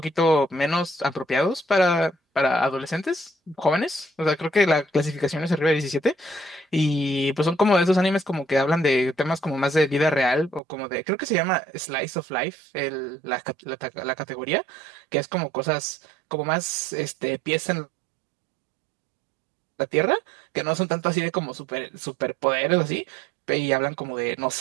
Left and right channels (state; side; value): drops out; left; at 10.6 s